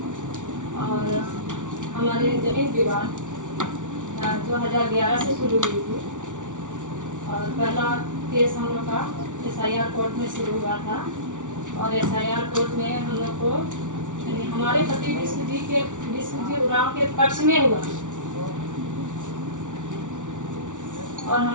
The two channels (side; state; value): left; late; 0.87 ms